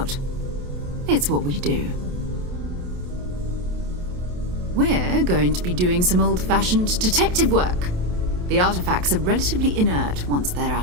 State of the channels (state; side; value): late; left; 28 ms